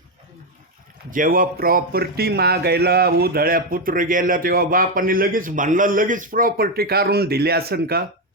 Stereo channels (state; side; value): normal; both; correlation 0.07